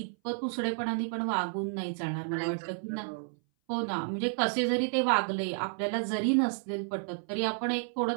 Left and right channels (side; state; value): left; silent; 57 dB below the other